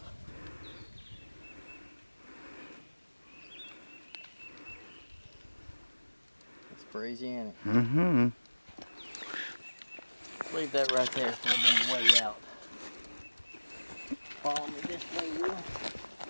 Crazy, ain't it? Mm-hmm. Leave that right there for the way out. Follow me this way, Will.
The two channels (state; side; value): inverted; both; correlation -1.00